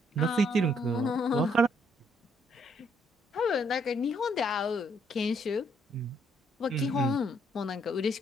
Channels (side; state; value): both; normal; correlation 0.70